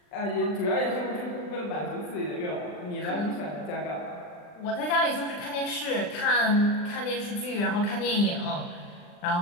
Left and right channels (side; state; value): right; late; 40 ms